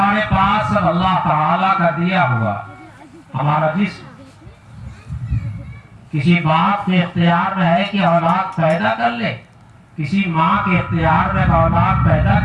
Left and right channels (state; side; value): identical; both; correlation 1.00